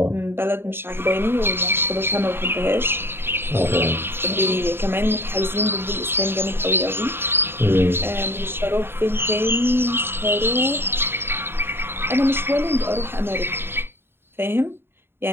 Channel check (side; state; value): left; late; 0.11 ms